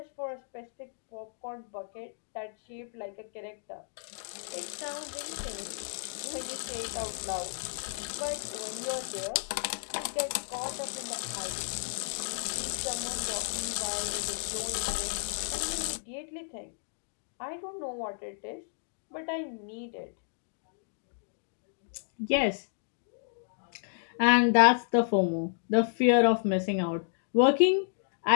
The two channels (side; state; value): right; silent; digital silence